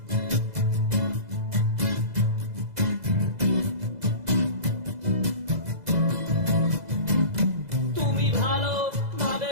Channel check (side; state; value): left; late; 2.0 ms